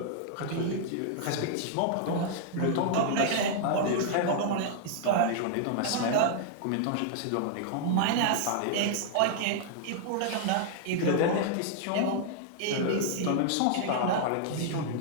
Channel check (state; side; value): different; both; correlation -0.01